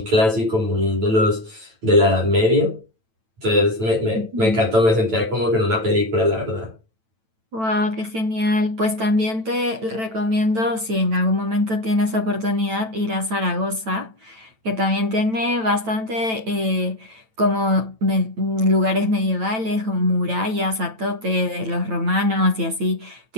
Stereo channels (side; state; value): left; late; 9.0 ms